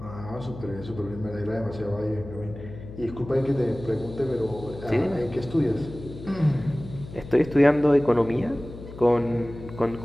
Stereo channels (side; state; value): left; noise; hum, 14 dB below the sound